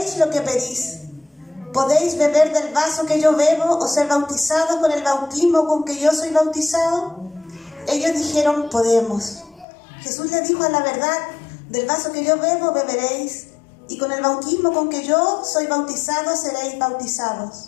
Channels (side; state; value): right; drops out; at 9.7 s